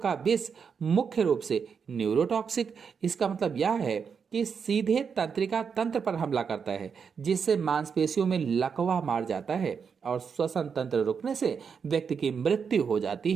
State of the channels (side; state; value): left; quieter; 6.3 dB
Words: विष मुख्य रूप से न्यूरोटॉक्सिक, इसका मतलब यह है कि सीधे तंत्रिका तंत्र पर हमला करता है, जिससे मांसपेशियों में लकवा मार जाता है और श्वसन तंत्र रुकने से व्यक्ति की मृत्यु हो जाती